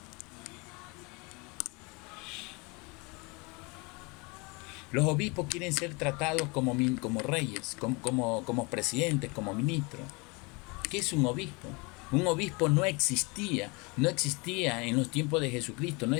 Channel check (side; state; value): right; quieter; 28.3 dB